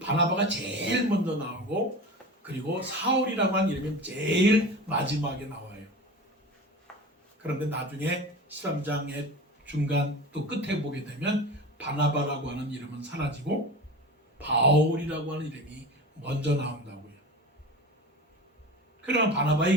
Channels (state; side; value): normal; both; correlation 0.32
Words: 제일 먼저 나오고, 그리고 사울이라고 하는 이름이 제일 마지막에 나와요. 그런데 나중에 13장의 중간 또 끝에 보게 되면 바나바라고 하는 이름은 사라지고 바울이라고 하는 이름이 먼저 나온다고요. 그러나